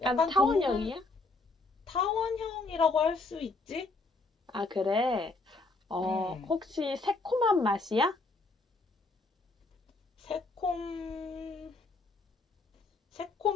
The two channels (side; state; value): right; quieter; 3.4 dB